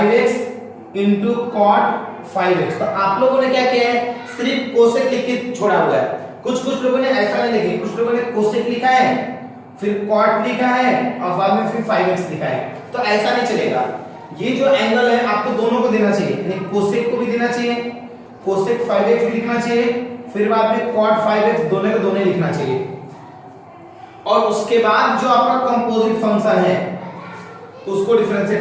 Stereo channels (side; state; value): both; identical; correlation 1.00